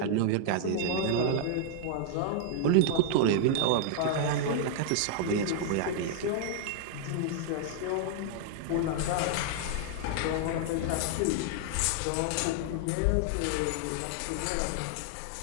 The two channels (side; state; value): both; different; correlation -0.01